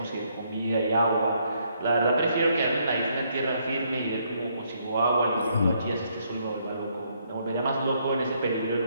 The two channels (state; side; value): inverted; both; correlation -0.71